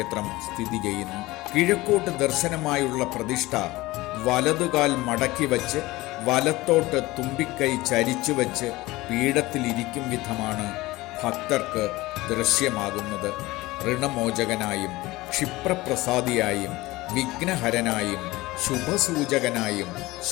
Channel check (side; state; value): right; quieter; 19.7 dB